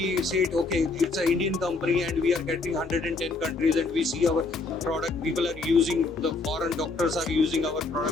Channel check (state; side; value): quieter; right; 3.7 dB